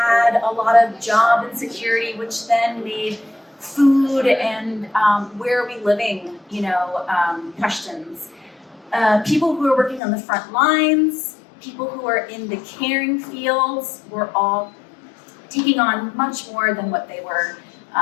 a lot of job insecurity, which then made food and where are we living, questions. People who are working on the front lines, people who are in the caring fields, were all taking on much more than what they were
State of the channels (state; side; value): drops out; right; at 10.0 s